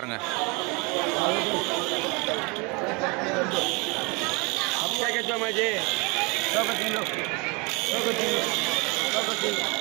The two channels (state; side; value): quieter; left; 29.0 dB